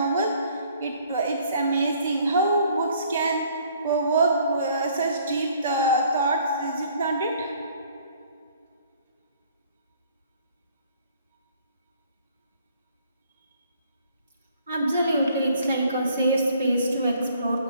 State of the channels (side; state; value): both; inverted; correlation -0.60